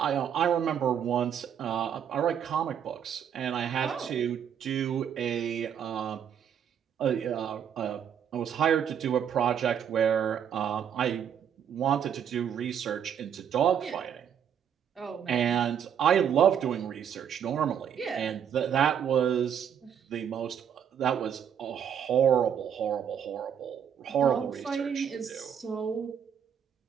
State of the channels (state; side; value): quieter; left; 8.5 dB